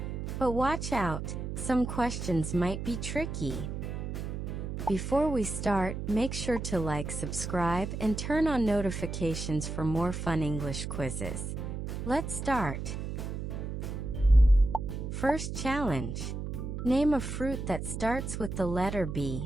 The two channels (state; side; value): noise; right; hum, 5 dB below the sound